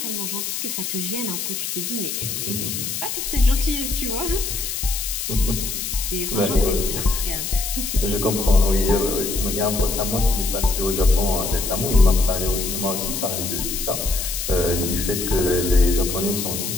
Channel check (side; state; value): left; noise; hiss, 4 dB below the sound